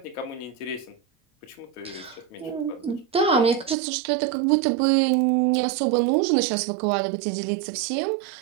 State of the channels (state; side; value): drops out; left; at 3.8 s